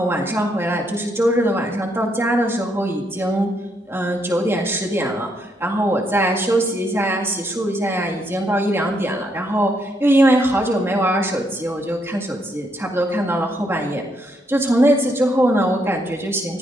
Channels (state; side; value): normal; both; correlation 0.75